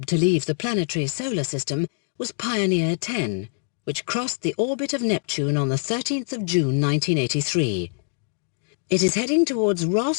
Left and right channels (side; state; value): right; silent; digital silence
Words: to leave the planetary solar system was Pioneer 10, which crossed the orbit of Neptune on the 13th of June 1983. It is heading towards